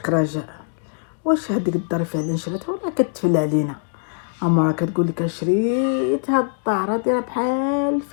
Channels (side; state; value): right; silent; digital silence